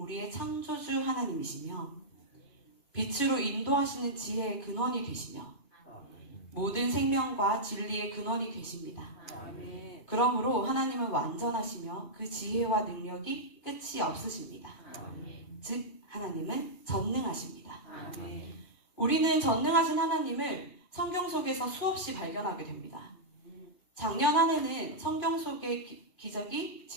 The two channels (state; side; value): late; right; 2.4 ms